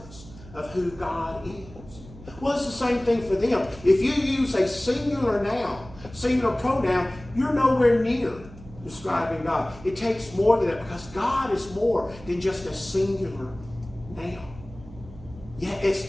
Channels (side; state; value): right; noise; hum, 18 dB below the sound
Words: of who God is. Well, it's the same thing for them. If you use a singular noun, singular pronoun, you're nowhere near describing God. It takes more than that because God is more than just a singular noun. Yeah, it's